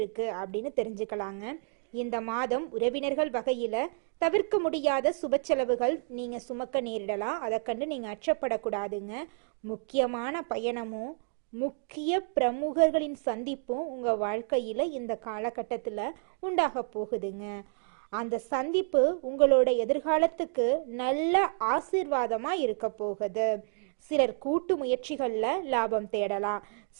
அப்படின்னு தெரிஞ்சுக்கலாங்க. இந்த மாதம் உறவினர்கள் வகையில தவிர்க்க முடியாத சுப செலவுகள் நீங்க சுமக்க நேரிடலாம். அதை கண்டு நீங்க அச்சப்படக்கூடாதுங்க. முக்கியமான பயணமும் முக்கிய பிரமுகர்களின் சந்திப்பும் உங்க வாழ்க்கையில இந்த காலகட்டத்துல உண்டாக போகுதுங்க. அந்த சந்திப்பு உங்களோட எதிர்காலத்துக்கு நல்ல ஆசீர்வாதமா இருக்க போகுது. சிலர் கூட்டு முயற்சிகள்ல லாபம் தேடலாம்.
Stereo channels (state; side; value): silent; left; 58 dB below the other